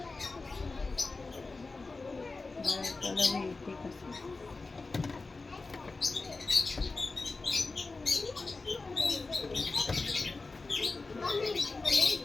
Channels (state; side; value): quieter; right; 3.7 dB